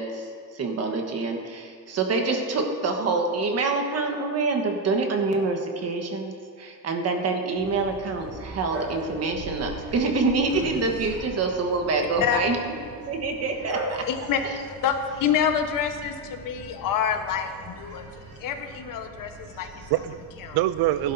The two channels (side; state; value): both; normal; correlation 0.06